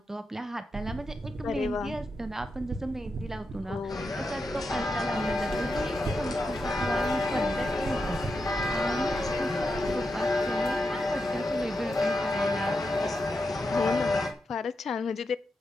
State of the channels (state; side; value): normal; both; correlation 0.87